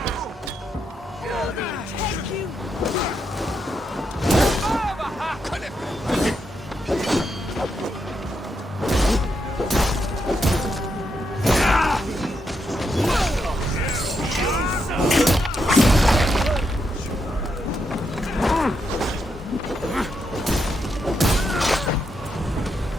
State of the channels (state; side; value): normal; both; correlation 0.81